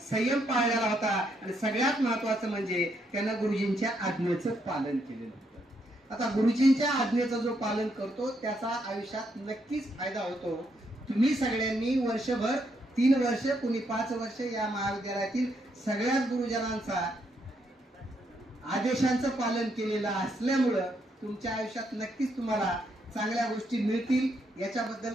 संयम पाळलेला होता आणि सगळ्यात महत्वाचं म्हणजे त्यांना गुरुजींच्या आज्ञेचं पालन केलेलं होतं. आता गुरुजींच्या आज्ञेचं जो पालन करतो त्याचा आयुष्यात नक्कीच फायदा होतो. तुम्ही सगळ्यांनी वर्षभर 3 वर्ष, कुणी 5 वर्ष या महाविद्यालयातील सगळ्याच गुरुजनांचा आदेशांचं पालन केलेलं असल्यामुळं तुमच्या आयुष्यात नक्कीच तुम्हाला चांगल्या गोष्टी मिळतील. याच्याबद्दल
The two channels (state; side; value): normal; both; correlation 0.76